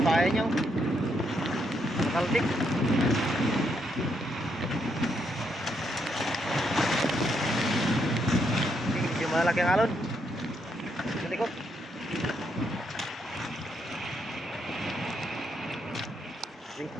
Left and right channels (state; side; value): normal; both; correlation 0.77